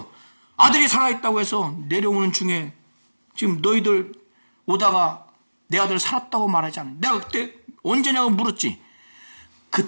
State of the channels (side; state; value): both; inverted; correlation -1.00